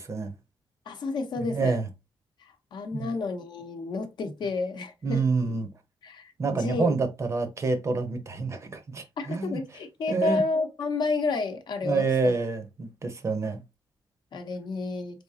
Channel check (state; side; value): normal; both; correlation 0.73